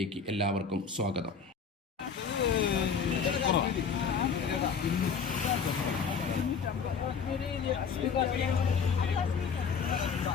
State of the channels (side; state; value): right; quieter; 6.1 dB